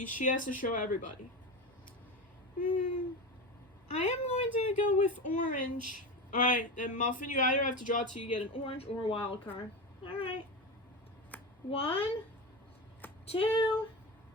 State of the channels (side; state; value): both; normal; correlation 0.22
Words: she has to show everybody. I am going to go with orange. Alright, then Muffin, you either have to draw till you get an orange or a wild card. Alright. 1, 2,